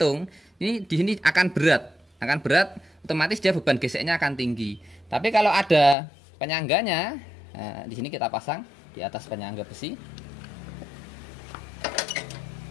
Ini di sini akan berat. Otomatis dia beban geseknya akan tinggi. Tapi kalau ada penyangganya, nah, di sini kita pasang di atas penyangga besi.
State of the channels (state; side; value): drops out; right; at 6.0 s